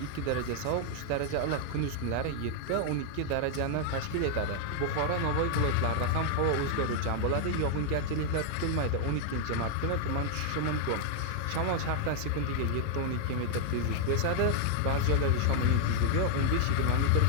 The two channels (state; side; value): different; both; correlation 0.00